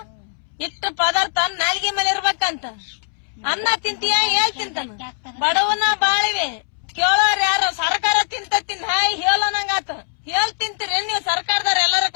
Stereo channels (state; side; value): silent; right; 65 dB below the other